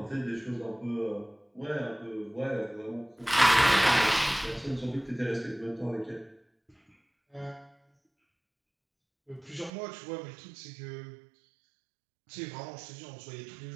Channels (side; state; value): left; drops out; at 9.7 s